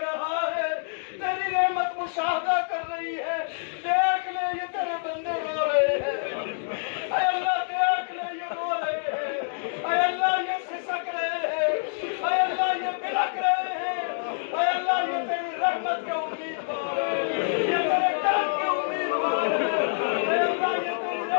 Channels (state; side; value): silent; right; digital silence